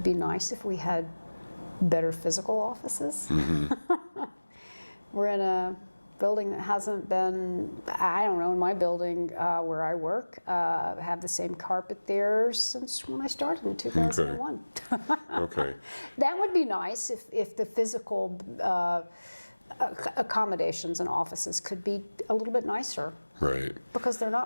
be nice if we had better physical offices. Mm-hmm. We're in a building that hasn't been, in my building where I work, have the same carpet there since when I started in 2001. Okay. That would be nice if the physical accommodations and offices could be a little bit nicer. Right. Because they're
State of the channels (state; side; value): inverted; both; correlation -1.00